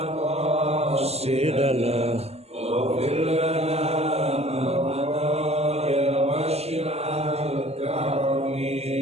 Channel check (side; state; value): left; late; 0.30 ms